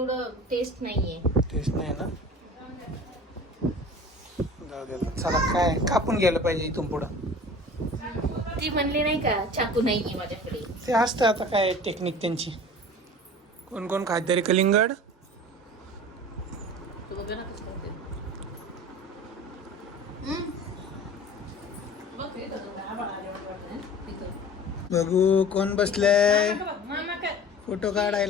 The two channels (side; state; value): both; normal; correlation 0.41